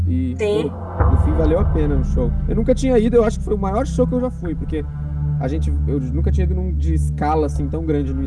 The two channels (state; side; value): identical; both; correlation 1.00